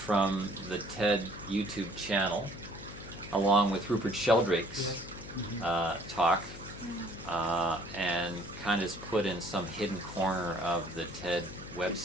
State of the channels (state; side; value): noise; left; hum, 13 dB below the sound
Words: the TED YouTube channel, along with Rupert Sheldrake's talk, and kind of is put in some hidden corner of the TED